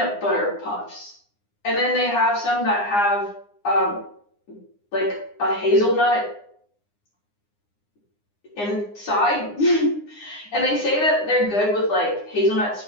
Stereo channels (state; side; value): late; right; 9.7 ms